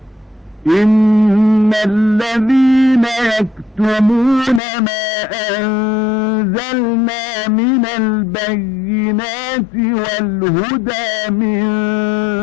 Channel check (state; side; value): drops out; right; at 4.6 s